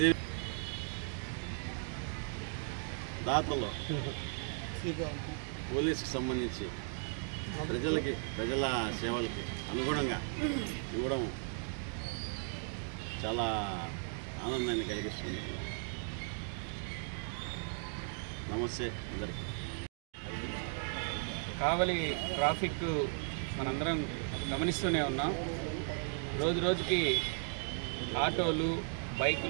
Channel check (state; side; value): silent; left; 53 dB below the other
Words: దాతలో పోలీసుకి సంబంధించి ప్రజల సేవలకి అనుగుణంగా ఇవ్వడం చాలా ఆనందాన్ని కలిగిస్తుంది. నమస్తే అందరికీ. కావలి ట్రాఫిక్ మనందరం గమనిస్తూనే ఉన్నాం. రోజు రోజుకి ఆటోలు